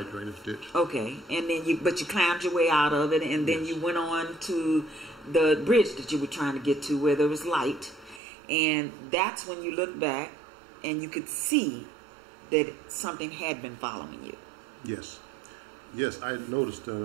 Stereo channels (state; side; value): drops out; left; at 8.2 s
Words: drainage ditch. Okay, and then you climbed your way out of it, and then you went on to the bridge that you were trying to get to, where there was light, and that's when you looked back, and you could see that something had been following you. Yes. Yes, I noticed,